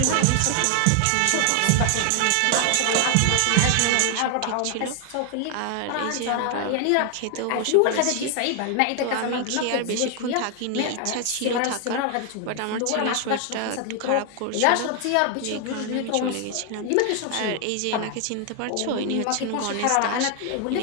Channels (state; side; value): different; both; correlation 0.00